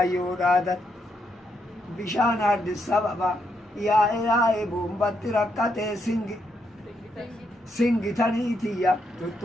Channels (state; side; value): normal; both; correlation 0.79